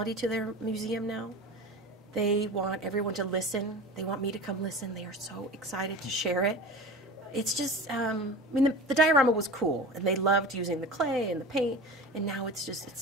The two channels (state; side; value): normal; both; correlation 0.33